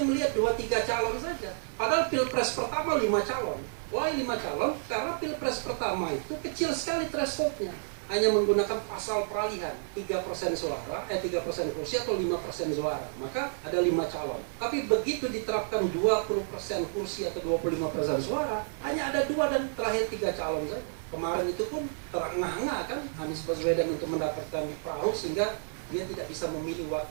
melihat 2-3 calon saja. Padahal pilpres pertama 5 calon. Why 5 calon? Karena pilpres pertama itu kecil sekali thresholdnya. Hanya menggunakan pasal peralihan 3% suara, 3% kursi atau 5% suara. Maka ada 5 calon. Tapi begitu diterapkan 20% kursi atau 25% suara, hanya ada 2 dan terakhir 3 calon saja. Kemarin itu pun terengah-engah kan Anies Baswedan untuk mendapatkan perahu sehingga dia tidak bisa memilih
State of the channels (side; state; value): left; silent; digital silence